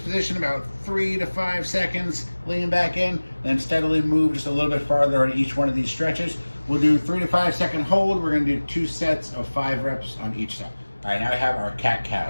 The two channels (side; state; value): both; inverted; correlation -1.00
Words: about 3 to 5 seconds, lean back in, then steadily move just a little bit farther on each one of these stretches. We'll do 3 to 5 second hold. We're gonna do 2 sets of 5 reps on each side. All right, now we have our